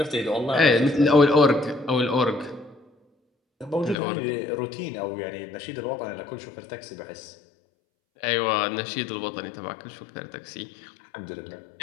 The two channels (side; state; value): right; drops out; at 4.0 s